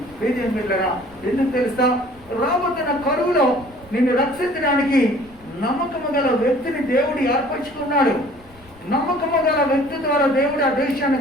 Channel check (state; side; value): noise; left; rumble, 25 dB below the sound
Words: వీధులరా, ఎందుకు తెలుసా? రాబోతున్న కరువులో నిన్ను రక్షించడానికి నమ్మకము గల వ్యక్తిని దేవుడు ఏర్పరచుకున్నాడు. నమ్మకము గల వ్యక్తి ద్వారా దేవుడు ఆ దేశాన్ని